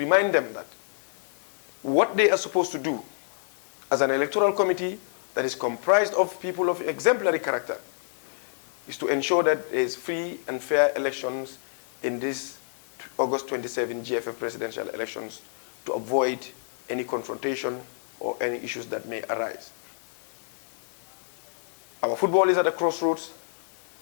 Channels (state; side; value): silent; right; 59 dB below the other